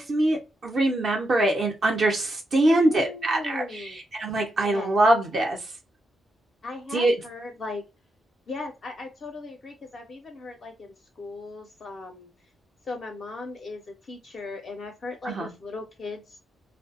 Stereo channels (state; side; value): normal; both; correlation 0.84